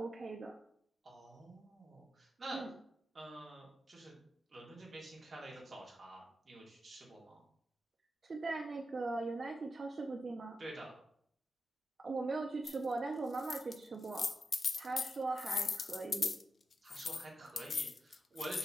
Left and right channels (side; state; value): both; normal; correlation 0.88